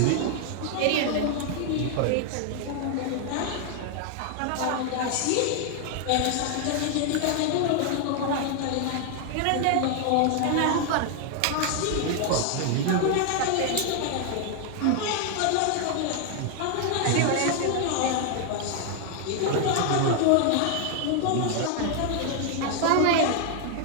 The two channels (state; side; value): different; both; correlation 0.00